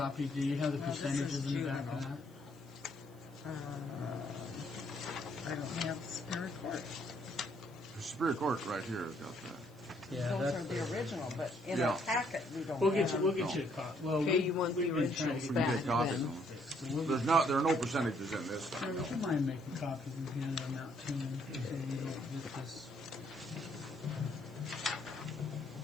Do you have the No, this percentages is in the back of juvenile. that? I don't have Superior Court. Superior Court right here has got that. Yeah, Those that's are the original, but in Yeah. our packet we don't We'll have. get you. We'll get you a copy. Well, Okay, you want the we've been trying originals to We get- can back get copies then. of them. There are no percentages in this thing. Would you mind making copies and handing them out to me so we don't get this?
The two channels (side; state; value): left; noise; hiss, 29 dB below the sound